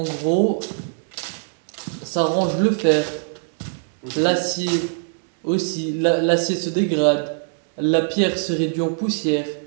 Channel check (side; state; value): left; silent; digital silence